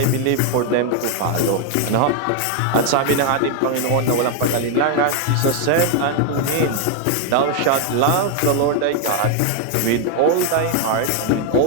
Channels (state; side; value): different; both; correlation 0.01